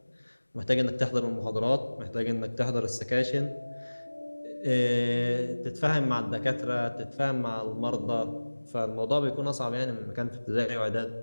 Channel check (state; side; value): inverted; both; correlation -1.00